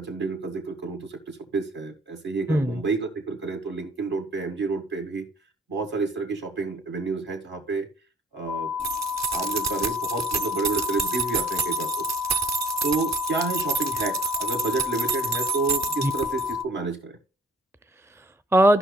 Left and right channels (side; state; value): both; normal; correlation 0.56